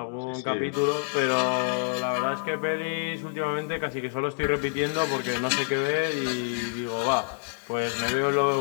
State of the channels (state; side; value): silent; right; 60 dB below the other